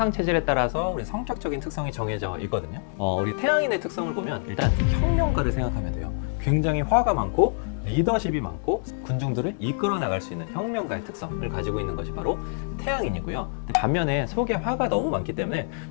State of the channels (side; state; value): right; silent; 61 dB below the other